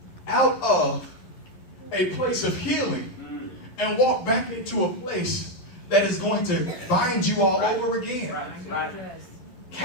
out of a place of healing and walk back into a place that is going to bind you all over again. Right. Right.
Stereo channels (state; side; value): late; right; 12 ms